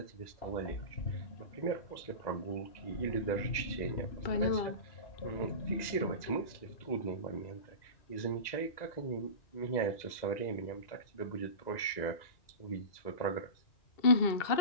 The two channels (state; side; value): late; right; 2.0 ms